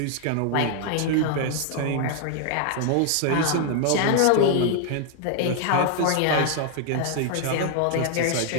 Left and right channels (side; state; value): both; different; correlation 0.00